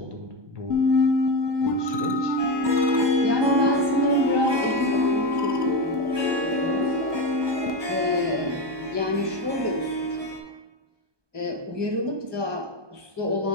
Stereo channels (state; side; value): late; left; 1.2 ms